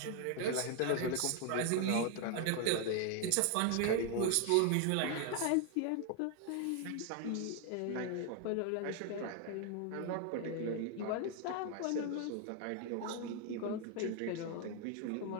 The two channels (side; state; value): both; different; correlation 0.00